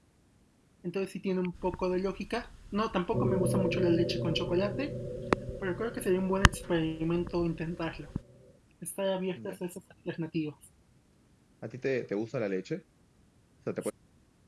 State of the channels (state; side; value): identical; both; correlation 1.00